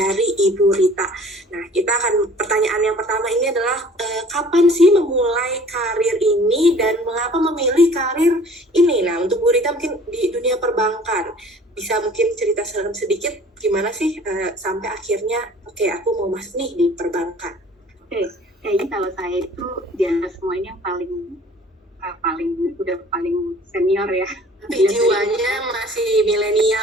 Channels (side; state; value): both; normal; correlation 0.50